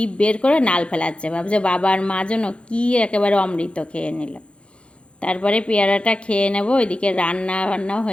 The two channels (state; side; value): late; right; 0.058 ms